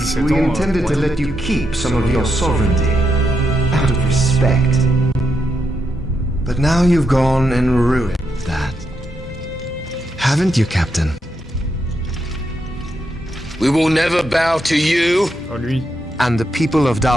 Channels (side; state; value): both; normal; correlation 0.82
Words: we intended to let you keep some of your sovereignty, out of respect. But now you've gone and ruined that. Haven't you, Captain? We will never bow to you. Oh, lui. And the people of